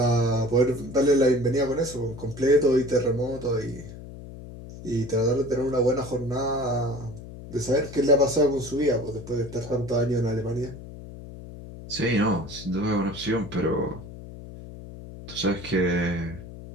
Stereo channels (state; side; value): noise; left; hum, 14 dB below the sound